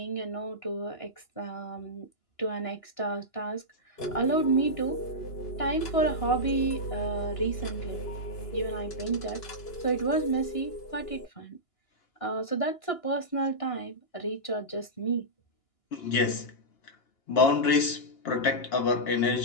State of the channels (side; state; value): right; late; 2.9 ms